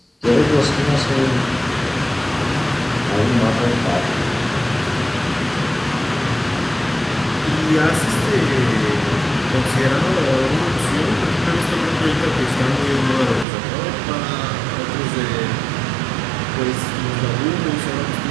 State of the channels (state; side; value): drops out; left; at 13.5 s